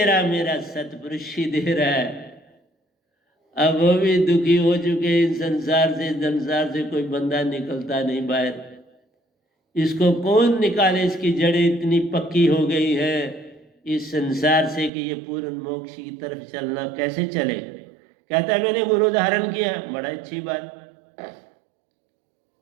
रहा, मेरा सतपुरुष ही दे रहा है। अब वो भी दुखी हो चुके इस संसार से कोई बंदा निकलता नहीं बाहर। इसको कौन निकाले? इसकी जड़ें इतनी पक्की हो गई है इस संसार से कि ये पूर्ण मोक्ष की तरफ चलना कैसे चले? कहता है मैंने गुरु धारण किया, बड़ा अच्छी बात।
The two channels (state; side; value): drops out; left; at 14.9 s